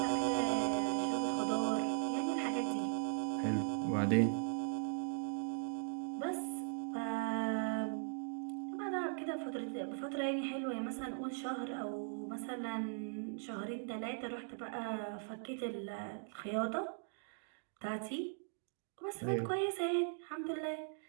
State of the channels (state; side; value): silent; left; digital silence